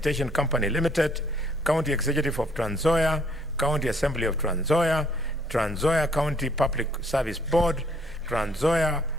Company Limited, County Executive of Trans Nzoia, County Assembly of Trans Nzoia, Trans Nzoia County Public Service Board, Trans Nzoia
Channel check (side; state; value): both; normal; correlation 0.65